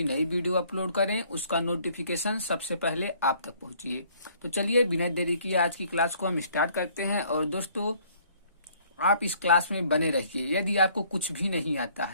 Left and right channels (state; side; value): inverted; both; correlation -0.60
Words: नई वीडियो अपलोड करें उसका नोटिफिकेशन सबसे पहले आप तक पहुंचे। तो चलिए बिना देरी किए आज की क्लास को हम स्टार्ट करते हैं। और दोस्तों, आप इस क्लास में बने रहिए। यदि आपको कुछ भी नहीं आता